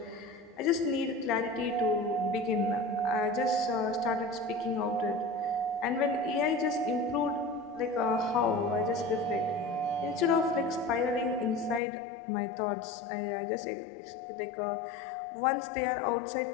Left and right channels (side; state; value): right; drops out; at 11.8 s